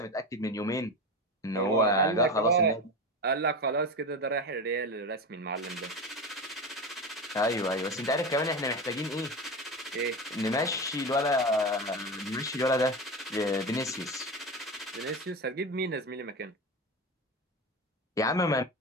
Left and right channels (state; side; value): normal; both; correlation 0.22